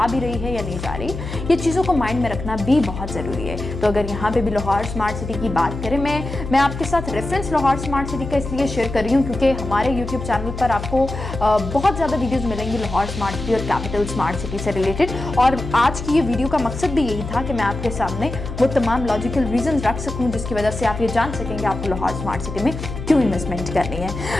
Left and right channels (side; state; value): left; noise; hum, 8 dB below the sound